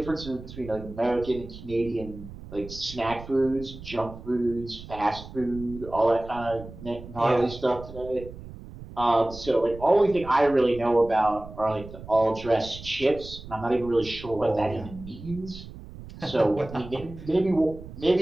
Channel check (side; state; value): right; noise; rumble, 14 dB below the sound